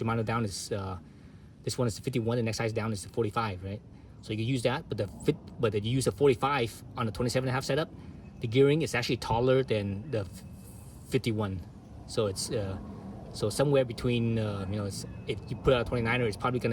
down is this one is the 51, the next size down is the 45, right? So you could use that, but if you use a 45 on the 27 and a half setup, the gearing is actually taller than the 51. So it's so somewhere between, you know, if you put out a 29er, it's probably going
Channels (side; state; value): both; identical; correlation 1.00